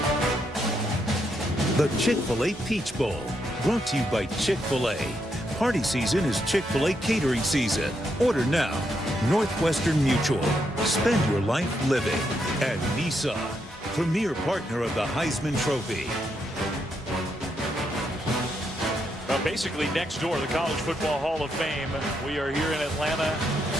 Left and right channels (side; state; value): both; normal; correlation 0.79